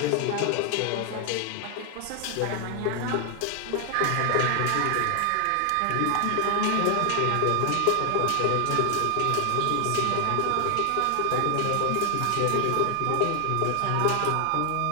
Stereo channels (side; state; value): both; different; correlation 0.00